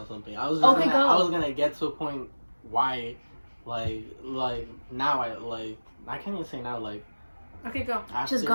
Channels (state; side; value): inverted; both; correlation -1.00